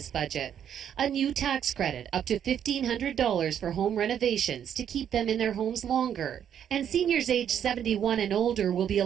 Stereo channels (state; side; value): quieter; left; 9.2 dB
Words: budget. A new tax credit, up to $1,500 for home renovations to keep them in their homes longer. And seniors aged 71 and older will be